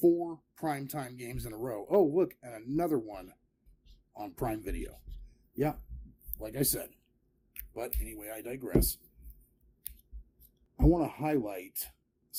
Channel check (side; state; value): both; identical; correlation 1.00